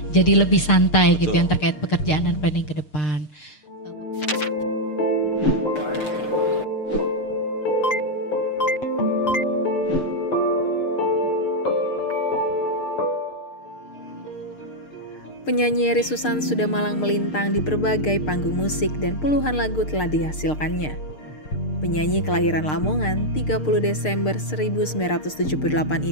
jadi lebih santai gitu yang terkait pekerjaan dan planning ke depan. Penyanyi Eri Susan sudah malang melintang di berbagai panggung musik dan puluhan lagu telah dihasilkannya. Penyanyi kelahiran Lamongan 30 Desember 1978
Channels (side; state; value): right; late; 6.6 ms